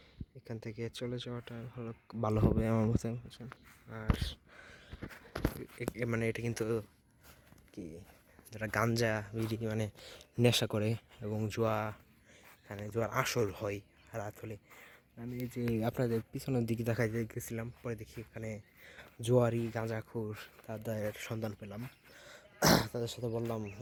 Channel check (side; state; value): both; identical; correlation 1.00